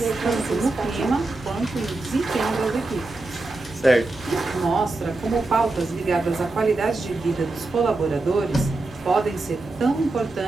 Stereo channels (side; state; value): left; quieter; 3.1 dB